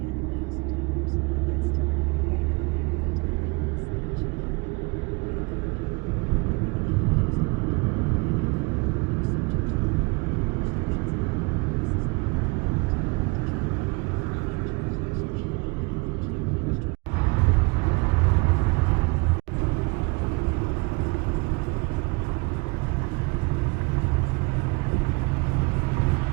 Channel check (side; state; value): left; quieter; 27.8 dB